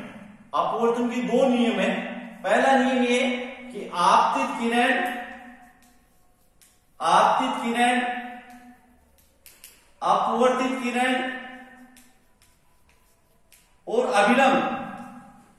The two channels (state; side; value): identical; both; correlation 1.00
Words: अपवर्तन के 2 नियम है। पहला नियम ये कि आपतित किरण अपवर्तित किरण और अभिलंब,